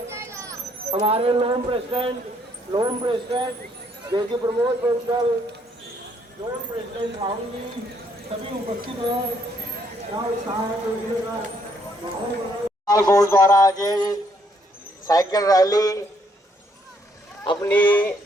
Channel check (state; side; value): normal; both; correlation 0.69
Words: हमारे लोन प्रेसिडेंट जेसी प्रमोद बंसल, लोन प्रेसिडेंट राहुल जी सभी उपस्थित हैं। गोल्ड द्वारा आज साइकिल रैली अपनी